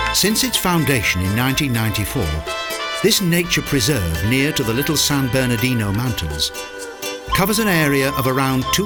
Since its foundation in 1994, this nature preserve near to the Little San Bernardino Mountains covers an area of around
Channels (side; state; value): both; identical; correlation 1.00